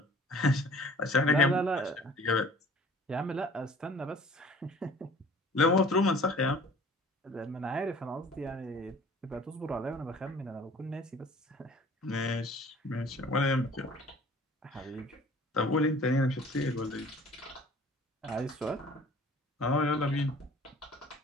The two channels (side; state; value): both; normal; correlation 0.50